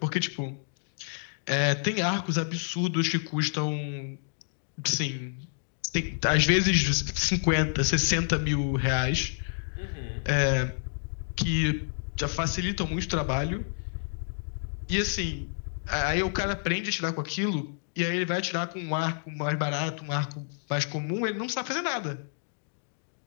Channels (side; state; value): right; silent; digital silence